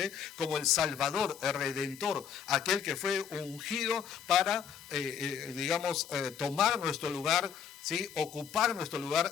como el Salvador, el Redentor, aquel que fue ungido para, tomar nuestro lugar, ¿sí? Ocupar nuestro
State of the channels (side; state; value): right; quieter; 7.9 dB